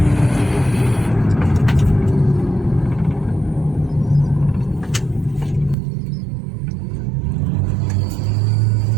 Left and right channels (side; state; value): left; drops out; at 5.8 s